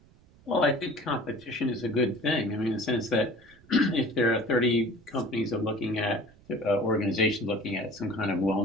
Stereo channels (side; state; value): right; noise; rumble, 27 dB below the sound